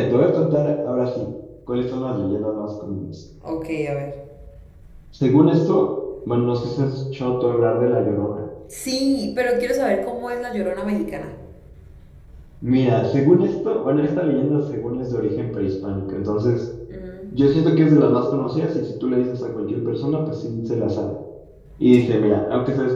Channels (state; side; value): identical; both; correlation 1.00